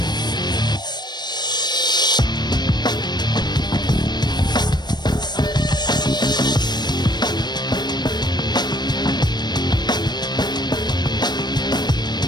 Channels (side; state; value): right; late; 0.21 ms